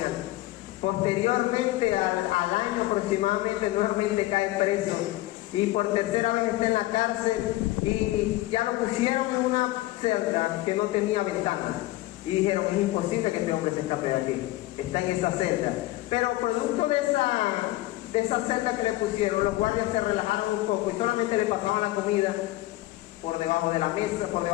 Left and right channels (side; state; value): right; quieter; 17.6 dB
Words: alta. Posteriormente, al año aproximadamente, nuevamente cae preso. Y por tercera vez está en la cárcel y ya lo pusieron en una celda que no tenía ventana. Y dijeron, es imposible que este hombre se escape de aquí. Está en esa celda. Pero producto de esa celda que le pusieron, los guardias se relajaron un poco y solamente le pasaban la comida por debajo de la mesa, por